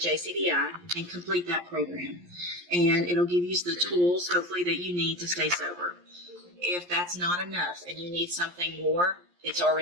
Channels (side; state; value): left; late; 11 ms